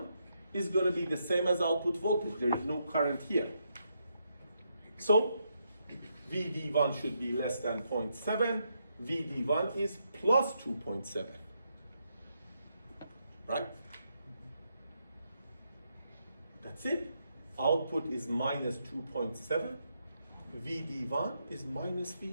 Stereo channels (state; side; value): inverted; both; correlation -0.79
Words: is going to be the same as output voltage. There is no current here. So VD1 should be less than 0.7. VD1 is plus 2.7. Right? That's it. Output is minus 2.7. VD1 is minus